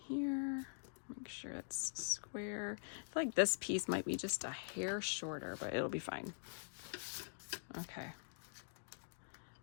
here. Make sure it's square. I feel like this piece might be just a hair shorter, but it'll be fine. Okay.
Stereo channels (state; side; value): silent; right; digital silence